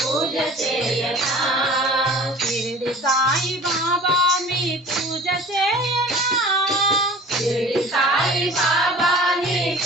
చేయనా షిరిడి సాయి బాబా మీ పూజ చేయనా షిరిడి సాయి బాబా నీ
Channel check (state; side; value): normal; both; correlation 0.44